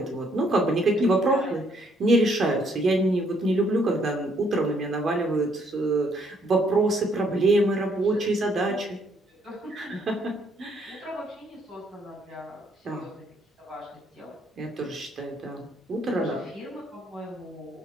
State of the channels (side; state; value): both; normal; correlation 0.69